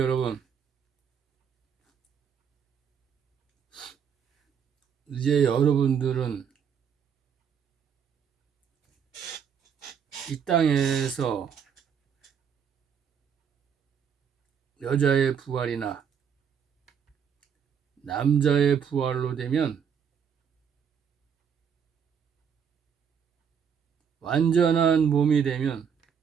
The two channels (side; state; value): left; quieter; 7.4 dB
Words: 이제 여러분들은 이 땅에서 여자의 부활이나 남자의 부활로 되면 완전한 몸이 되면